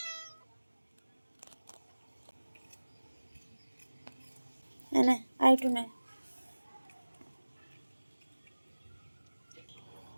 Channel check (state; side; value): inverted; both; correlation -1.00